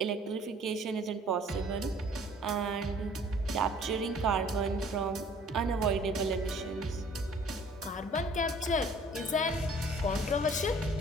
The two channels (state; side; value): normal; both; correlation 0.54